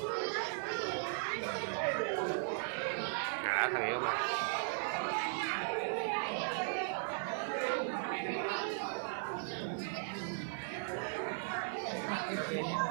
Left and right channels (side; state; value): left; silent; 53 dB below the other